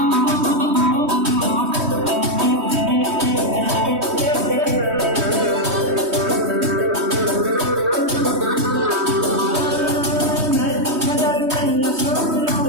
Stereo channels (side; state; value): left; late; 3.2 ms